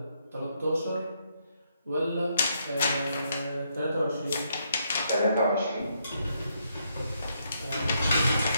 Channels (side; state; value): both; inverted; correlation -0.76